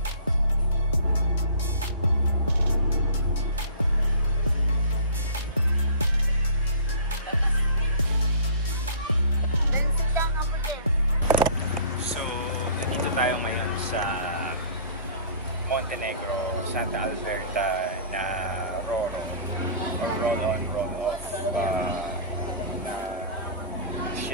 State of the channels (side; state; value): both; inverted; correlation -0.44